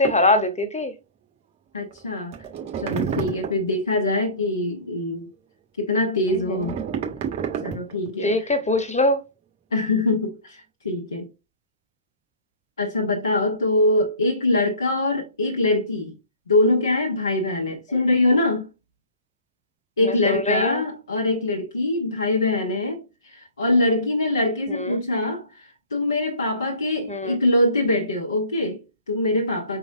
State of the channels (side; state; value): both; inverted; correlation -0.46